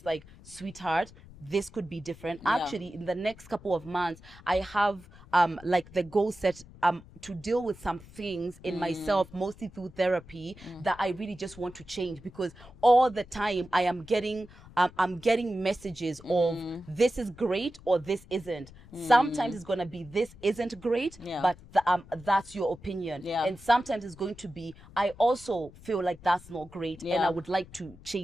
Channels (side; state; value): left; noise; rumble, 21 dB below the sound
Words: like, sweetheart, this could be different. Actually, in the next couple of months, I have like the goal set to deal with some things in myself, mostly through therapy, that I really just want to change, because all the time I am getting I'm getting messages of this is great or this isn't. Sometimes it's gonna be this isn't great, but that's your opinion. And sometimes it's going to be, I also feel like that's not great, and I would like to